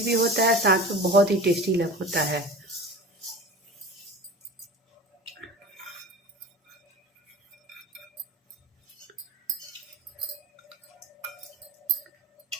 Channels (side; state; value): both; normal; correlation 0.35